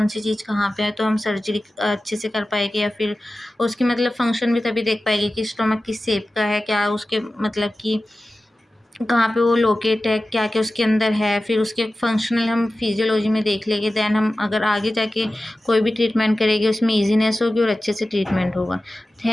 सी चीज़ कहाँ पे है, तो हम सर्जरी अच्छे से कर पाएंगे, या फिर उसकी मतलब फंक्शन भी तभी देख पाएंगे कि स्टोमक किस शेप का है, क्या उसके मतलब कि कहाँ पे वो लोकेट है, क्या क्या उसके अंदर है, फिर उसके फंक्शनल हम फिजियोलॉजी में देख लेंगे। दैन हम अगर आगे जाके कोई भी ट्रीटमेंट करेंगे उसमें ईजीनेस होगी और अच्छे से ट्रीटमेंट होगा।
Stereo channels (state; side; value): normal; both; correlation 0.95